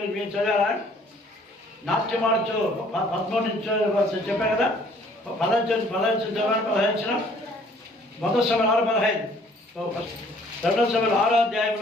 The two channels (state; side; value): normal; both; correlation 0.58